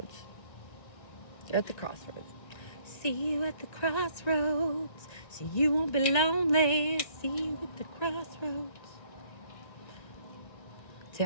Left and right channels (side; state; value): right; late; 1.9 ms